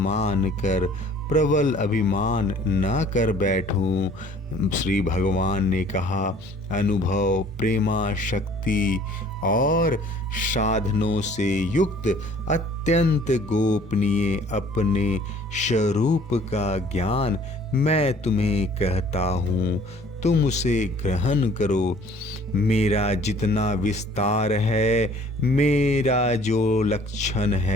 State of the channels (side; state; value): both; normal; correlation 0.54